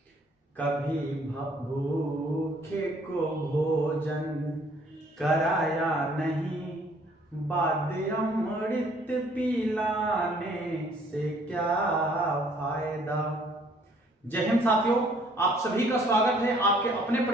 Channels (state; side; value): normal; both; correlation 0.61